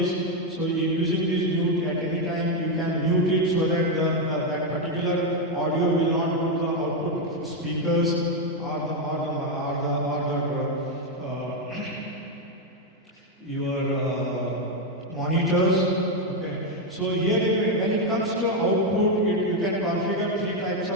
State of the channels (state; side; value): normal; both; correlation 0.04